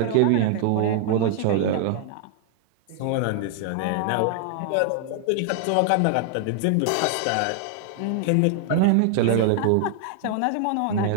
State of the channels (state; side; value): different; both; correlation -0.01